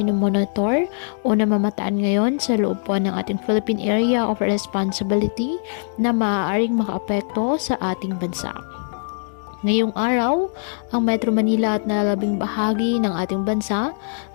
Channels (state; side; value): silent; right; digital silence